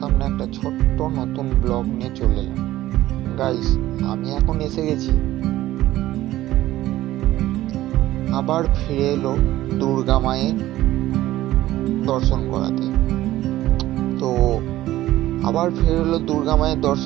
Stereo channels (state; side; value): quieter; left; 15.2 dB